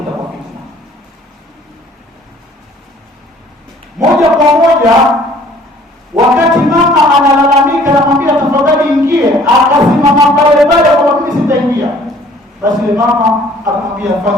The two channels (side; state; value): both; normal; correlation 0.55